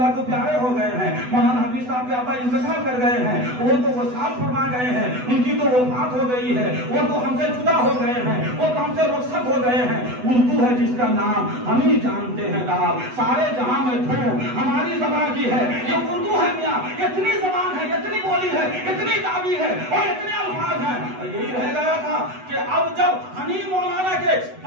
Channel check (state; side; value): late; left; 8.0 ms